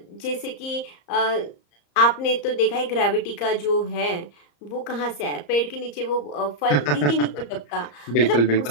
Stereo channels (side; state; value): right; late; 34 ms